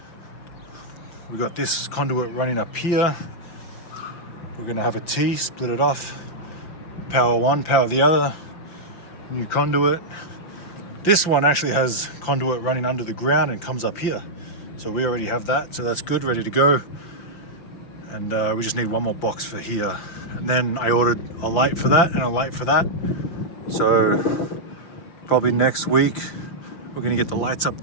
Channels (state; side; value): late; right; 5.7 ms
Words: We got this conduit running up here. We're gonna have a T, split it off. Power one, power the other. New conduit. This one actually has conduit running under the ground and comes up here. So we already have that, so that's good, ready to go. And we just need one more box for here. And then I ordered a light for that and a light for that. So probably next week, we're gonna get the lights up